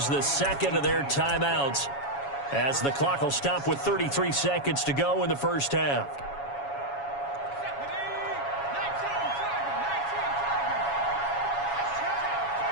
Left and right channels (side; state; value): right; late; 7.2 ms